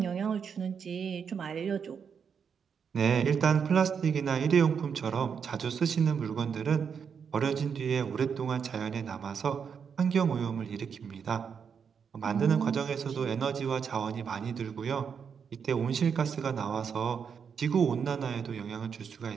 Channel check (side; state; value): left; quieter; 6.8 dB